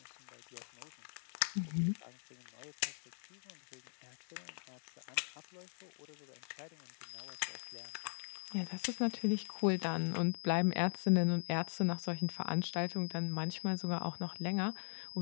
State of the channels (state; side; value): silent; right; digital silence